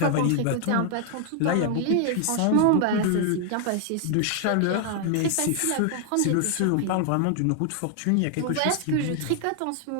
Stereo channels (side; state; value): both; different; correlation 0.00